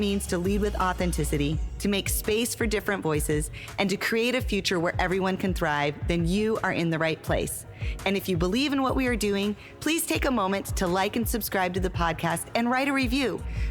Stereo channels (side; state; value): both; identical; correlation 1.00